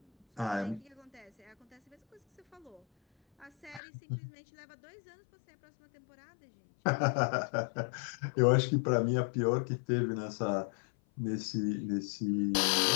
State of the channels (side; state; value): right; drops out; at 3.8 s